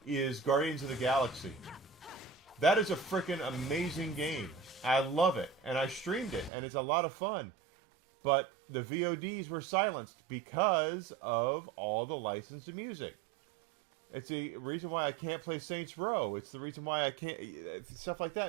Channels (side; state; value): left; drops out; at 6.5 s